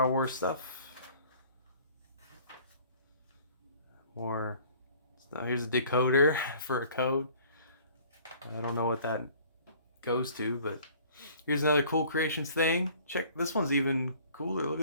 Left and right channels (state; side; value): inverted; both; correlation -0.52